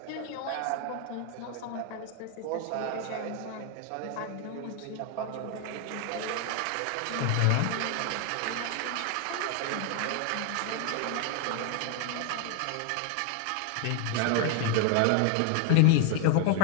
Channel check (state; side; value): different; both; correlation 0.01